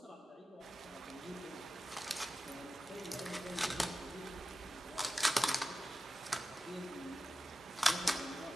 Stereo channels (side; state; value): both; normal; correlation 0.95